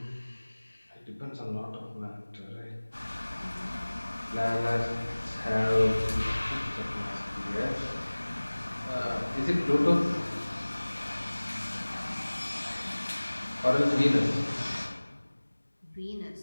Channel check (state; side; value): inverted; both; correlation -1.00